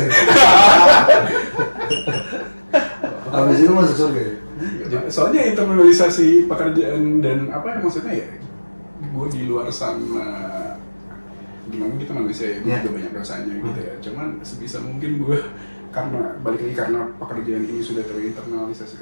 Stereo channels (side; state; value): both; inverted; correlation -1.00